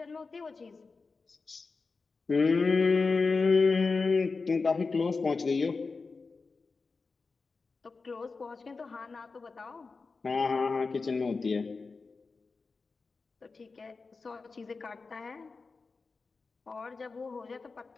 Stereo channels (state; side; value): quieter; right; 4.3 dB